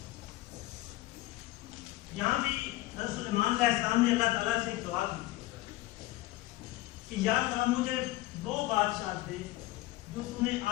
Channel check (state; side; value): quieter; right; 17.9 dB